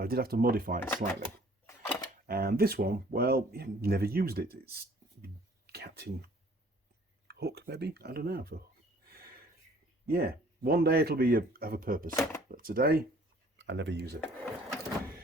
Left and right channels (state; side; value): normal; both; correlation 0.55